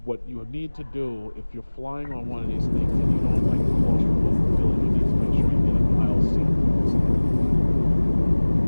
What you need to do if you're flying on one of these things and you don't like the claustrophobic feeling, you need to make sure you get an aisle seat.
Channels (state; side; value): inverted; both; correlation -1.00